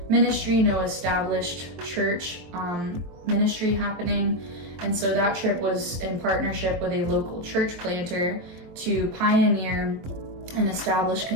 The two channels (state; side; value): late; left; 23 ms